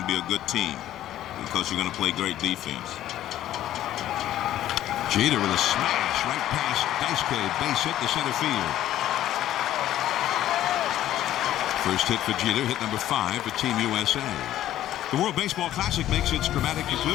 be a good team because you're going to play great defense. Jeter with a smash right past Daisuke, base hit to center field. First hit for Jeter, hit number 5 for Team USA. The World Baseball Classic makes its dramatic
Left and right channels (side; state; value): right; quieter; 12.8 dB